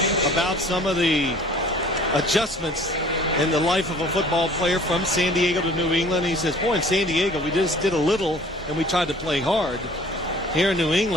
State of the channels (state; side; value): normal; both; correlation 0.50